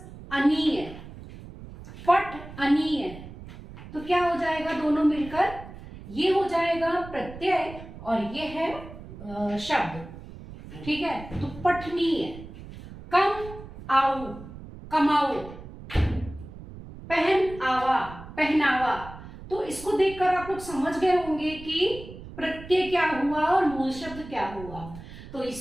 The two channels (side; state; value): right; noise; rumble, 15 dB below the sound